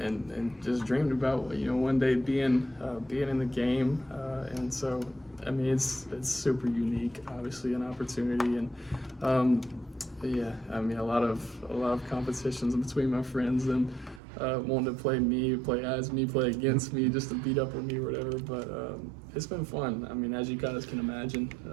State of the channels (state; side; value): drops out; left; at 14.2 s